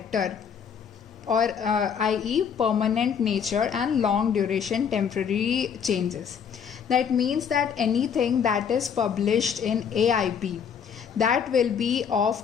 or i.e. permanent nature and long duration temporary changes. That means that anything that is published in AIP, that will be of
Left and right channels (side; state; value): right; quieter; 7.2 dB